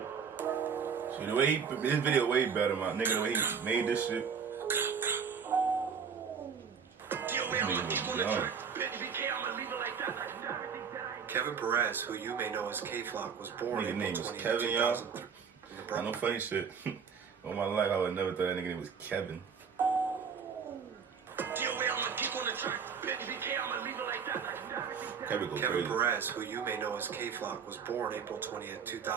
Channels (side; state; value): left; quieter; 6.5 dB